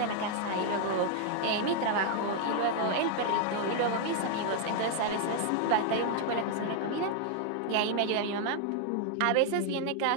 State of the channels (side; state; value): both; different; correlation 0.00